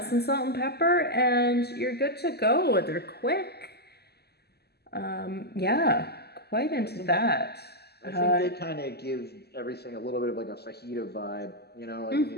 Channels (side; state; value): right; late; 0.47 ms